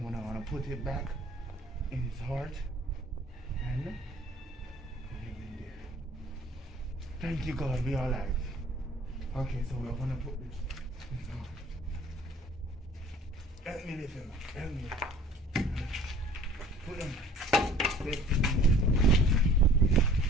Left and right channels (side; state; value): both; normal; correlation 0.51